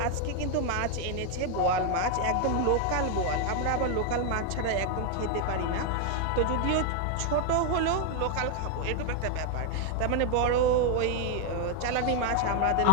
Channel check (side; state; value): both; different; correlation 0.00